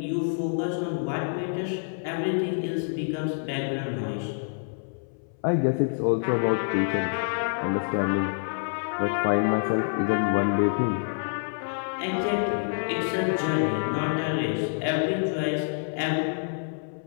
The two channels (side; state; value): right; silent; 60 dB below the other